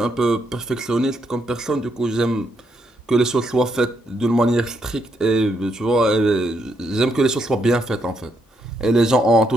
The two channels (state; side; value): normal; both; correlation 0.77